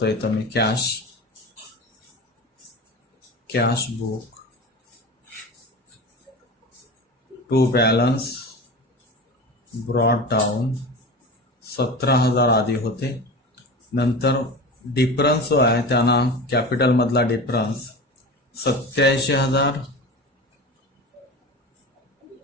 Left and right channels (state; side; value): normal; both; correlation 0.31